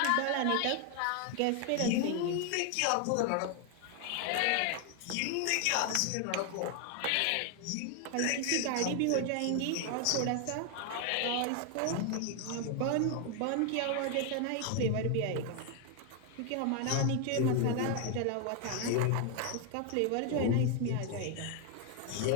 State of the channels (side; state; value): both; different; correlation 0.00